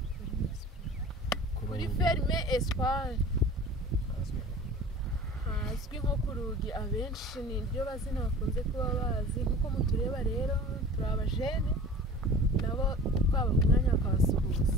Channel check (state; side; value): normal; both; correlation 0.41